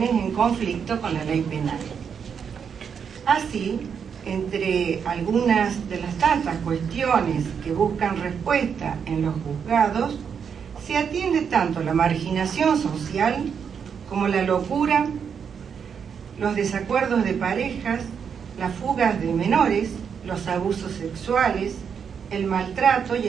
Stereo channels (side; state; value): left; quieter; 7.0 dB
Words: en conflicto con la ley penal. Así, entre algunas de las tantas cuestiones que buscan respuesta en los juzgados, se atiende tanto la marginación social como la locura, los desacuerdos de parejas, las fugas de menores, los abusos sexuales, el maltrato y